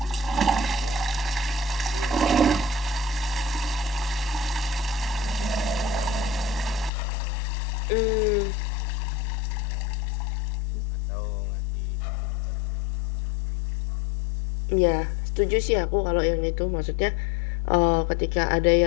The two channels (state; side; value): drops out; right; at 6.9 s